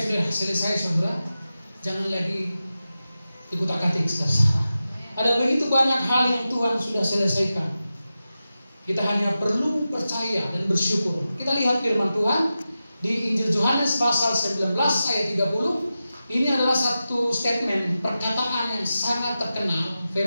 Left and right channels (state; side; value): inverted; both; correlation -0.93